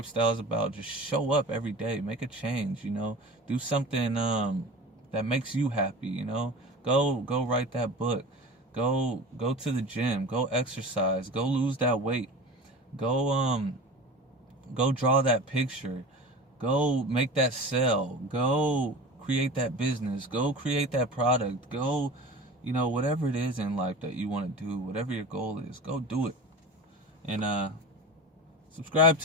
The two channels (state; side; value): normal; both; correlation 0.35